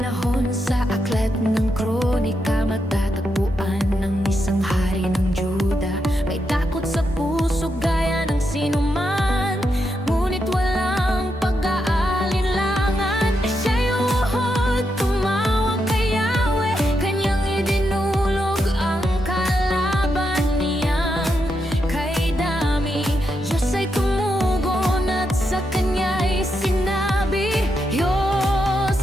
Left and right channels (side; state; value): both; normal; correlation 0.83